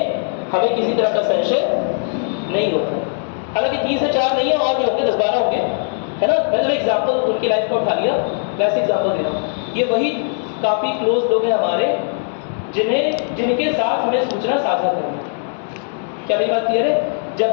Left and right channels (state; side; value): silent; right; 66 dB below the other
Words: हमें किसी तरह का संशय नहीं होता। हालांकि 3 से 4 नहीं है, और भी होंगे, 10-12 होंगे, है ना? मैंने एग्जाम्पल उनकी लाइफ को उठा लिया, वैसे एग्जाम्पल दे रहा हूँ। ये वही काफ़ी क्लोज लोग हैं हमारे जिनके साथ हमें सूचना साझा करनी है। क्या मेरी बात क्लियर है?